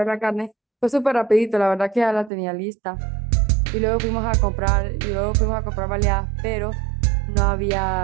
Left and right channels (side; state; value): left; drops out; at 2.3 s